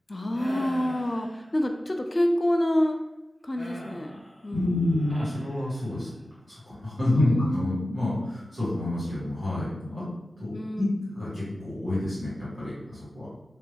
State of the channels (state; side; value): normal; both; correlation 0.94